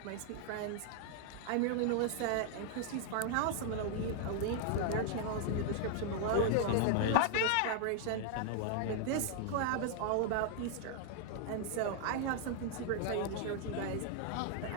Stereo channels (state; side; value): different; both; correlation 0.00